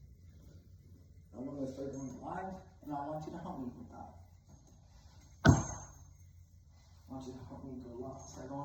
I'm going to start going live, and I want you to help me with that. I want you to help me go live. Start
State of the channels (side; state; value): both; identical; correlation 1.00